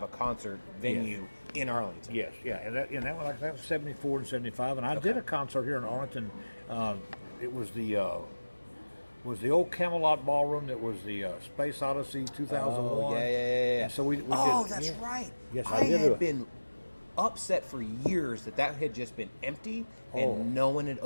a concert venue in Arlington. Yes, yeah, and that was 74 and 75, and I did a concert here in Arlington. It was the old Camelot Ballroom. That was the Space Odyssey 2001. Oh, yeah. And so we did. That's right. Yes, I had been upset for years that had just been empty and no one had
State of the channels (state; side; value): inverted; both; correlation -1.00